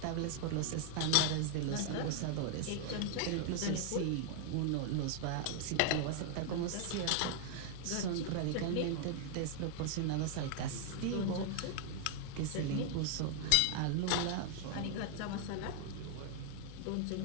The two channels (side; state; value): both; different; correlation 0.00